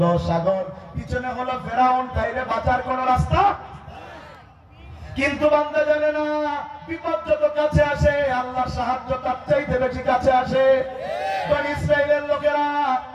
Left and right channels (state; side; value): identical; both; correlation 1.00